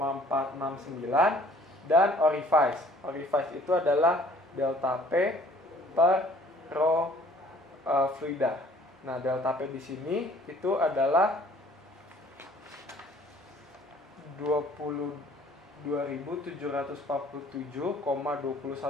dan orifice. Orifice itu adalah delta P per rho fluida. Nah, delta P di sini itu adalah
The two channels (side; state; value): both; normal; correlation 0.55